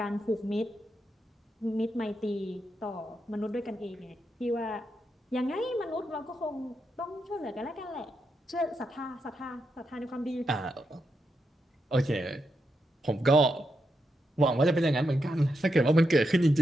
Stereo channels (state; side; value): normal; both; correlation 0.84